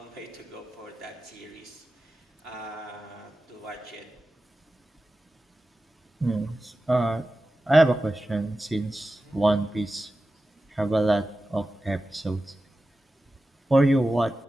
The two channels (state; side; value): normal; both; correlation 0.94